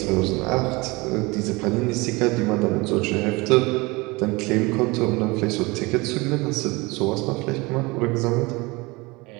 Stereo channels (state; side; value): quieter; left; 24.3 dB